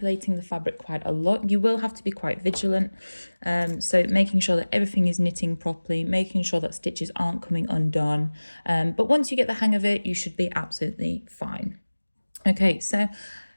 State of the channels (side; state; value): both; inverted; correlation -1.00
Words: the fabric quite a lot, you will have to be quite vigilant. So making sure that everything is knitting properly, making sure that stitches aren't coming undone. But once you get the hang of it, you should be absolutely fine. Okay, so